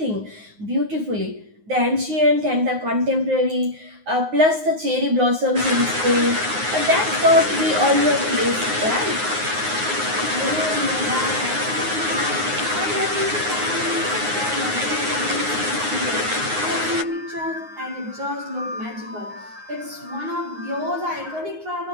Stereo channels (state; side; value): late; left; 9.5 ms